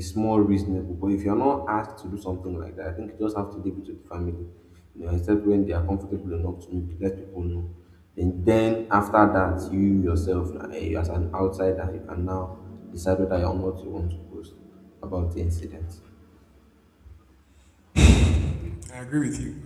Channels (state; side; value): identical; both; correlation 1.00